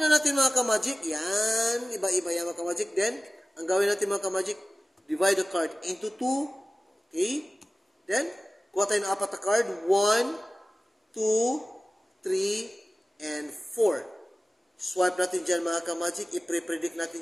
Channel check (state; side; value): normal; both; correlation 0.97